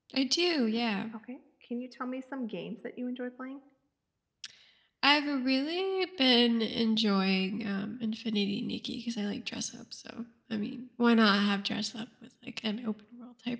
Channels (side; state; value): both; identical; correlation 1.00